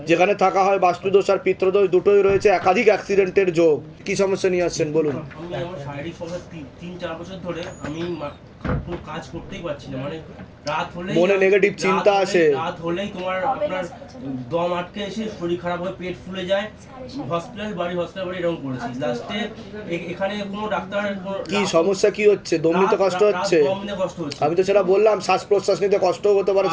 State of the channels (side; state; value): both; identical; correlation 1.00